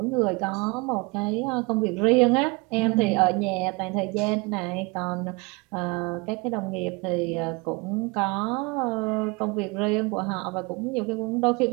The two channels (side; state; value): left; quieter; 26.9 dB